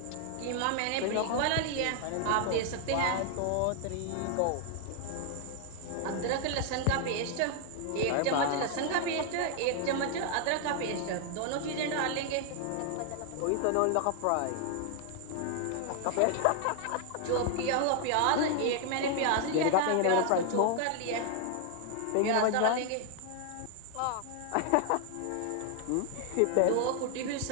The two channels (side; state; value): both; different; correlation 0.00